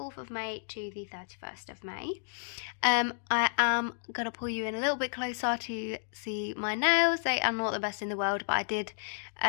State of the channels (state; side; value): silent; right; digital silence